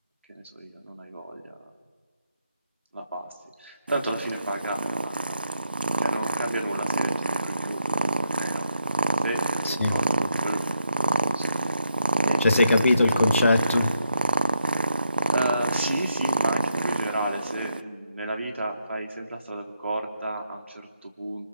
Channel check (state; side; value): inverted; both; correlation -0.79